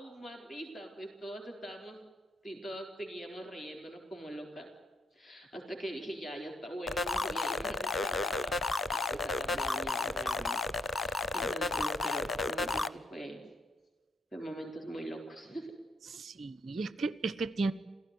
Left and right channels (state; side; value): normal; both; correlation 0.72